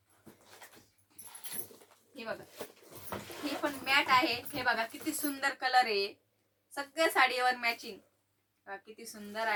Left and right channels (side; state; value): both; identical; correlation 1.00